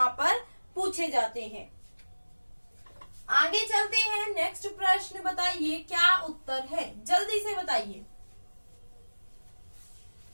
पर पूछे जाते हैं। आगे चलते हैं, नेक्स्ट प्रश्न बताइए क्या उत्तर है, जल्दी से बताइए।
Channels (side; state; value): both; inverted; correlation -1.00